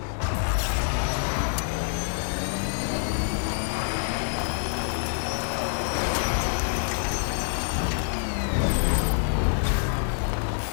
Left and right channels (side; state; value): right; silent; digital silence